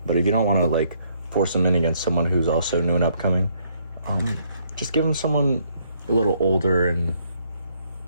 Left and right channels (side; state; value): both; inverted; correlation -0.69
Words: But if you don't want to like force him in against someone who's also new and upcoming, just give him someone a little older and